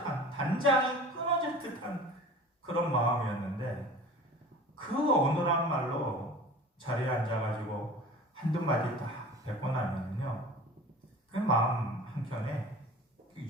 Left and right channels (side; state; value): both; normal; correlation 0.40